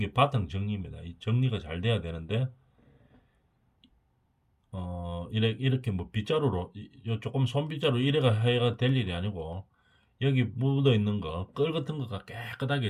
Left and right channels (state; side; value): identical; both; correlation 1.00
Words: 바탕 정리입니다. 이 정리가 잘 돼야 되는데 이렇게 뭐 빗자루로 조금 손빗자루 이래가 해가 될 일이 아니고 여기 묻어 있는 거, 끌 같은 거가